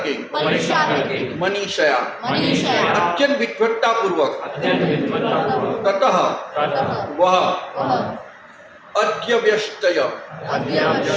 मनीषया अत्यंत विद्वत्ता पूर्वक ततः वह अध्यवस्तय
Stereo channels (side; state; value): both; identical; correlation 1.00